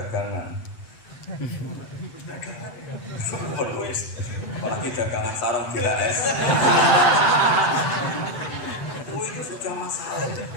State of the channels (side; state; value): right; late; 7.9 ms